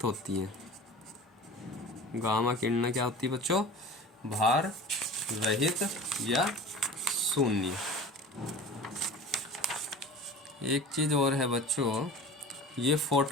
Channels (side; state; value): both; normal; correlation 0.37